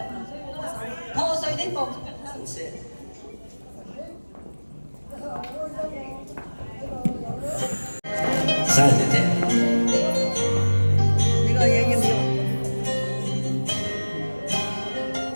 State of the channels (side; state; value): both; inverted; correlation -1.00